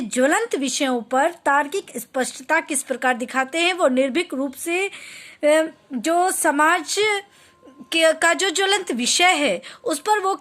ज्वलंत विषयों पर तार्किक स्पष्टता किस प्रकार दिखाते हैं। वो निर्भीक रूप से जो समाज का जो ज्वलंत विषय है उस पर वो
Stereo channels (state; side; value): identical; both; correlation 1.00